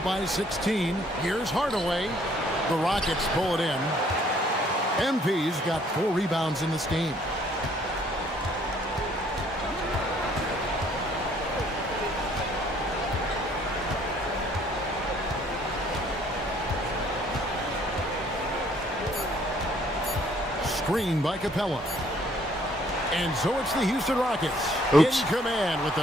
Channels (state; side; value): normal; both; correlation 0.62